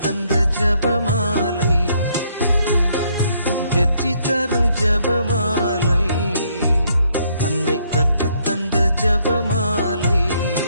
ஜபமாலை, வெற்றி தரும் ஜபமாலை, அன்னை கற்றுத்தந்த ஜபமாலை.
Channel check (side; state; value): both; inverted; correlation -0.70